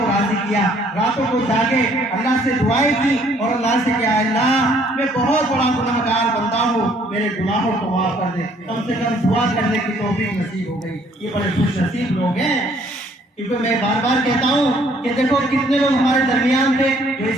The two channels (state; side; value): normal; both; correlation 0.62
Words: راضی کیا, راتوں کو جاگے, اللہ سے دعائیں کی اور اللہ سے کہا اللہ میں بہت بڑا گناہ گار بندہ ہوں, میرے گناہوں کو معاف کر دے. کم سے کم دعا کرنے کی توفیق نصیب ہو گئی. یہ بڑے خوش نصیب لوگ ہیں. کیونکہ میں بار بار کہتا ہوں کہ دیکھو کتنے لوگ ہمارے درمیان تھے جو